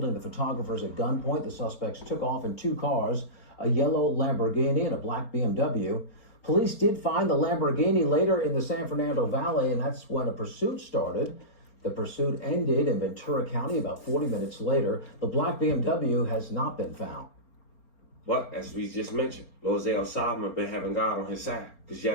the photographers at gunpoint, the suspects took off in 2 cars, a yellow Lamborghini and a black BMW. Police did find the Lamborghini later in the San Fernando Valley, and that's when a pursuit started. The pursuit ended in Ventura County about 40 minutes later. The black BMW has not been found. But as we just mentioned, Lilzayosama been having God on his side, because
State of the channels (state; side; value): late; right; 4.4 ms